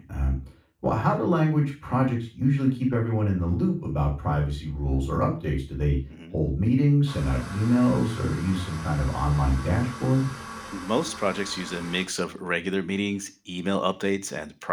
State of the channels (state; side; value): identical; both; correlation 1.00